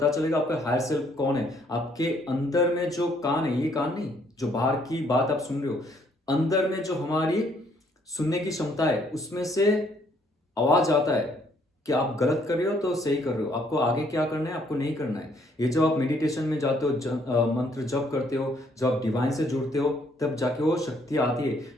चलेगा आपका हायर सेल्फ कौन है। आपके अंदर में जो कान है, ये कान नहीं जो बाहर की बात आप सुन रहे हो, अंदर में जो हमारी सुनने की क्षमता है, उसमें से आवाज आता है कि आप गलत कर रहे हो तो सही कर रहे हो, आपको आगे क्या करना है, आपको नहीं करना है। ये जब आप मेडिटेशन में जाते हो, मंत्र जप करते हो, जब आप डिवाइन से जुड़ते हो, तब जाके वो शक्ति आती है,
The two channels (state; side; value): normal; both; correlation 0.67